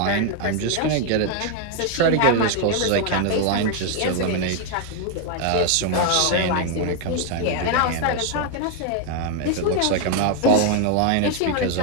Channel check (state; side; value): different; both; correlation 0.01